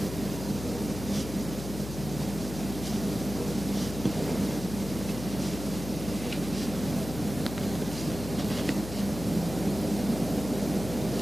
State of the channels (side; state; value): left; noise; hum, 9 dB below the sound